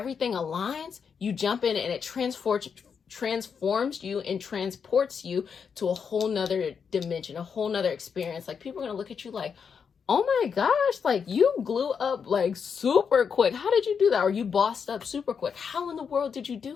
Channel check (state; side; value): quieter; right; 6.5 dB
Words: aligns, you jump in and it transforms you and transports you to a whole nother dimension, a whole nother experience. Like, people are going to look at you like, oh my gosh, like, you glue up like super quick. How did you do that? Or you bossed up super quick. How in the world did you